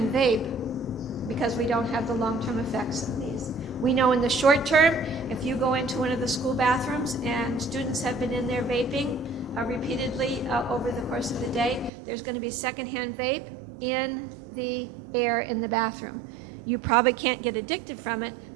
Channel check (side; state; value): left; drops out; at 11.9 s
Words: vape because we don't have the long-term effects of these. We know in the short term, if you go into one of the school bathrooms and students have been in there vaping repeatedly over the course of the day, there's going to be secondhand vape in the air in the bathroom. You probably can't get addicted from it,